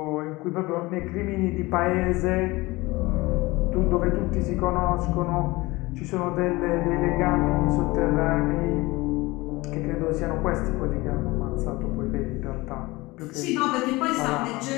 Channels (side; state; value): right; quieter; 21.6 dB